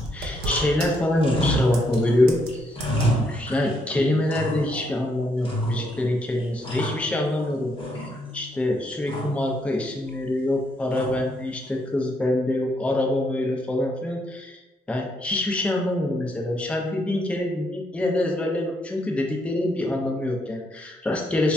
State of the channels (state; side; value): normal; both; correlation 0.75